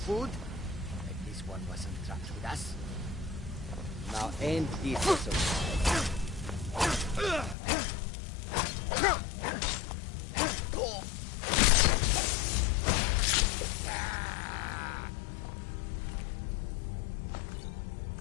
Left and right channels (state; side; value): drops out; right; at 7.6 s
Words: Like this one wasn't trapped with us. Now ain't this so